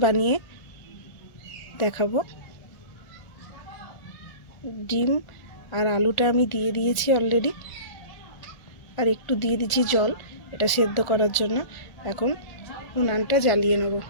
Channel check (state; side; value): late; right; 1.4 ms